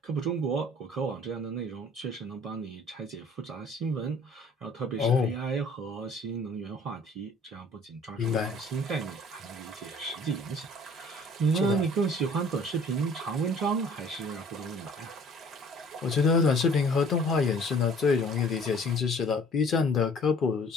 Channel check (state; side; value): normal; both; correlation 0.53